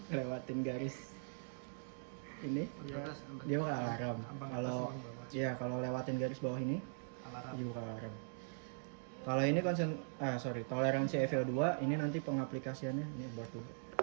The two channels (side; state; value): left; silent; digital silence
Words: garis ini, dia bakal alarm. Kalau lewatin garis bawah ini, dia bakal alarm. Kalau ini toleransi EVO2 ini nanti pengaplikasiannya ini buat dulu.